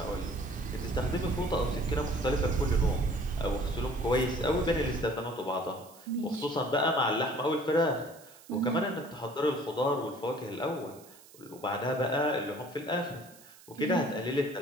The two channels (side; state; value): right; noise; hiss, 23 dB below the sound